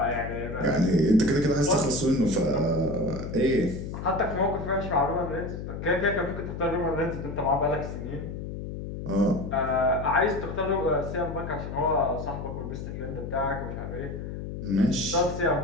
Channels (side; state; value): left; noise; hum, 7 dB below the sound